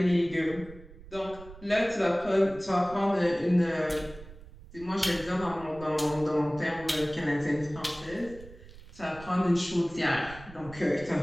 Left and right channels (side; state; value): right; noise; rumble, 18 dB below the sound